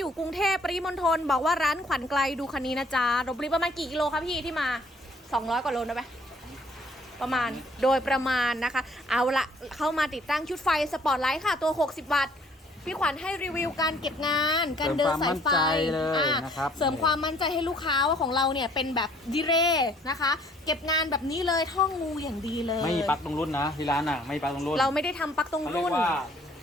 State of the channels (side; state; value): both; normal; correlation 0.60